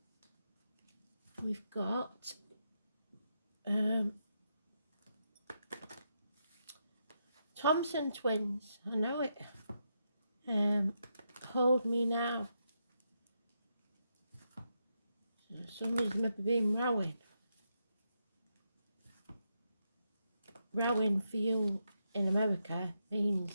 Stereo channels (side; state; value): both; inverted; correlation -0.82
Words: We've got Thompson twins. I know it. Hold me now. So somebody's maybe been rowing. Rowing for you in America